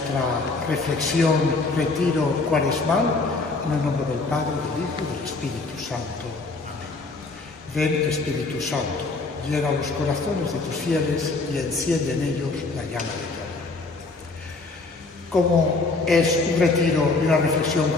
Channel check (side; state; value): right; quieter; 3.6 dB